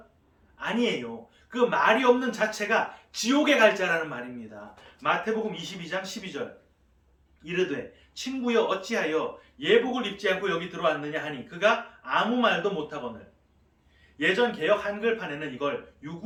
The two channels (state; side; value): identical; both; correlation 1.00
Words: 아니에요. 그 말이 없는 자체가 지옥에 갈 자라는 말입니다. 마태복음 22장 12절 이르되 친구여 어찌하여 예복을 입지 않고 여기 들어왔느냐 하니 그가 아무 말도 못하거늘. 예전 개역 한글판에는 이걸